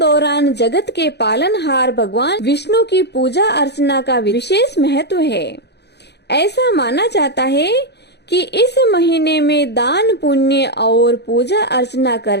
जगत के पालनहार भगवान विष्णु की पूजा अर्चना का विशेष महत्व है। ऐसा माना जाता है कि इस महीने में दान पुण्य और पूजा अर्चना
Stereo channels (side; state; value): right; late; 0.49 ms